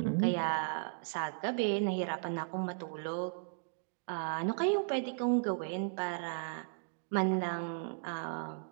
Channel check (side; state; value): left; silent; digital silence